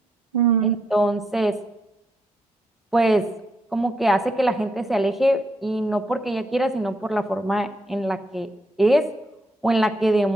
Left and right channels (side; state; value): both; normal; correlation 0.78